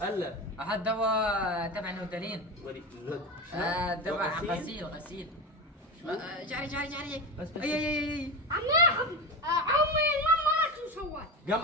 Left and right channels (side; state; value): both; normal; correlation 0.21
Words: احط دواء تبع نوتالين. ولي دواء غسيل. جاري بس اي عمي عمي ما شو سوى؟